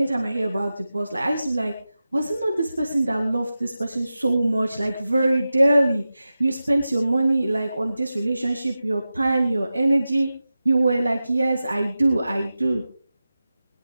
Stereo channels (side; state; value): both; inverted; correlation -0.94